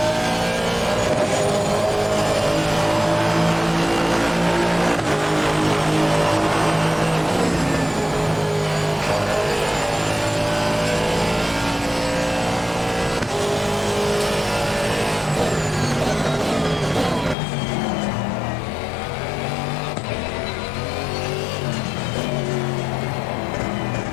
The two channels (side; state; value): right; drops out; at 17.4 s